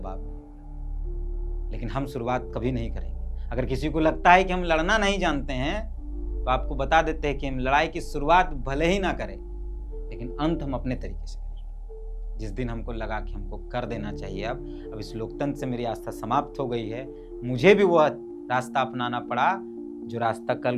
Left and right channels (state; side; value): identical; both; correlation 1.00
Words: मिलेगा, लेकिन हम शुरुआत कभी नहीं करेंगे। अगर किसी को लगता है कि हम लड़ना नहीं जानते हैं, तो आपको बता देते हैं कि हम लड़ाई की शुरुआत भले ही ना करें, लेकिन अंत हम अपने तरीके से करेंगे। जिस दिन हमको लगा कि हमको कर देना चाहिए, अब इस लोकतंत्र से मेरी आस्था समाप्त हो गई है, मुझे भी वह रास्ता अपनाना पड़ा जो रास्ता कल